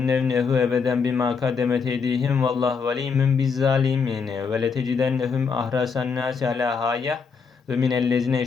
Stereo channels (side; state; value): right; quieter; 5.6 dB